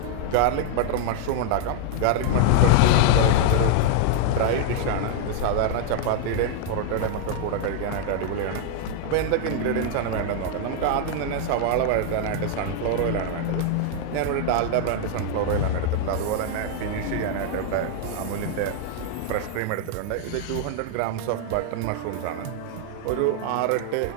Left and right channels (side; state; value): both; different; correlation 0.00